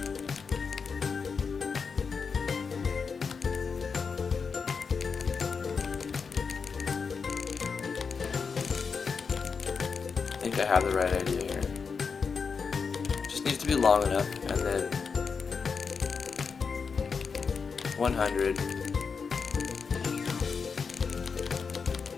I think I have the right idea here. Just needs to be long enough, and then 100.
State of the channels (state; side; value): quieter; right; 5.5 dB